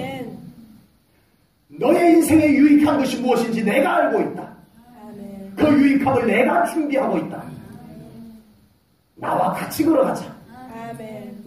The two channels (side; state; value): both; identical; correlation 1.00